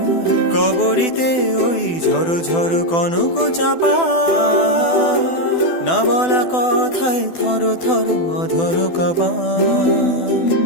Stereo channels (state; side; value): late; right; 12 ms